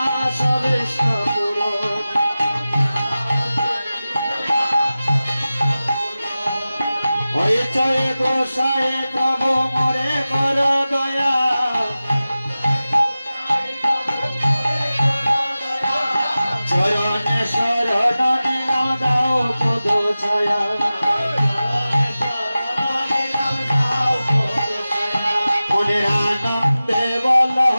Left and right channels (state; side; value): inverted; both; correlation -0.96